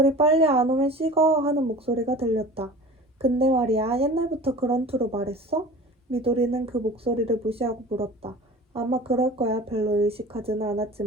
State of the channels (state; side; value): normal; both; correlation 0.40